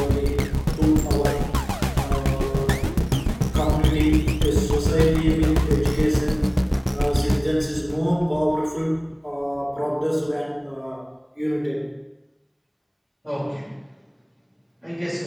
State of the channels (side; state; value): both; identical; correlation 1.00